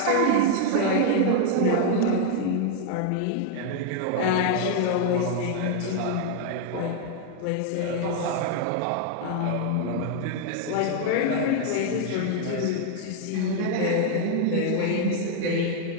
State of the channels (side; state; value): both; different; correlation 0.00